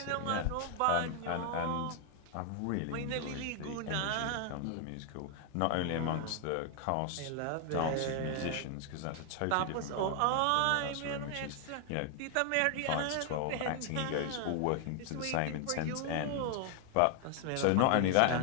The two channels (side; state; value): both; different; correlation 0.00